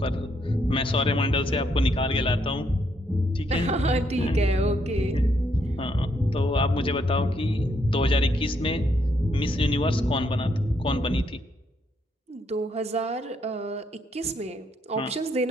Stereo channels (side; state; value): both; normal; correlation 0.74